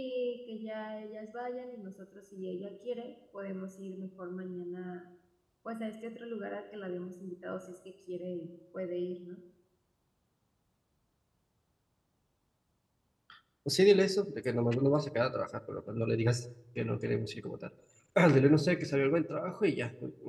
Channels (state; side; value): identical; both; correlation 1.00